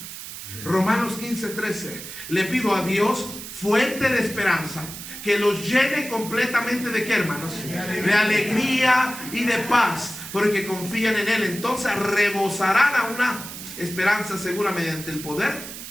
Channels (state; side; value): noise; right; hiss, 11 dB below the sound